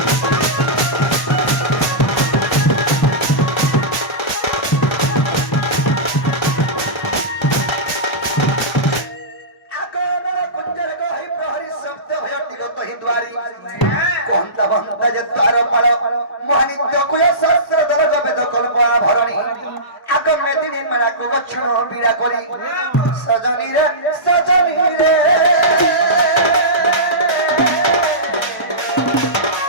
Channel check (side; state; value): right; late; 1.1 ms